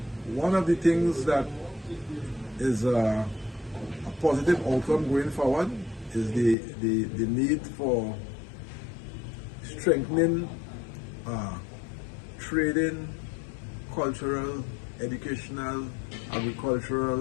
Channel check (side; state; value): right; drops out; at 6.6 s